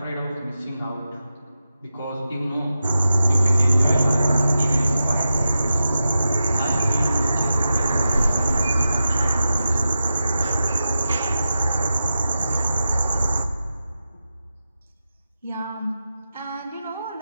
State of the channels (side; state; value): both; inverted; correlation -0.91